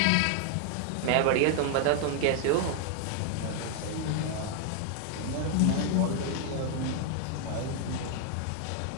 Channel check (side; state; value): both; different; correlation 0.00